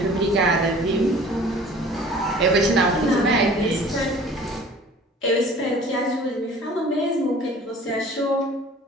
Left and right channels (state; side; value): normal; both; correlation 0.48